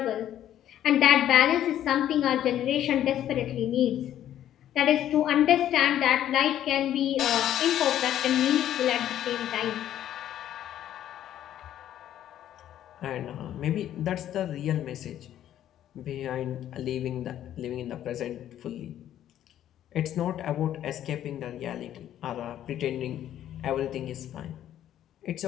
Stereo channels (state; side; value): quieter; right; 11.5 dB